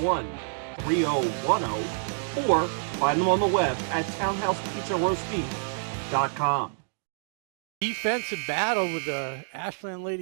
or find them on the web at townhousepizzaroastbeef.com. Defensive battle with the Ashland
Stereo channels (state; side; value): silent; left; digital silence